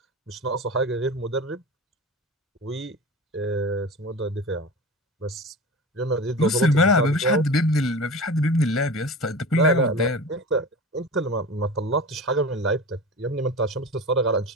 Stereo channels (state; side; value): normal; both; correlation 0.32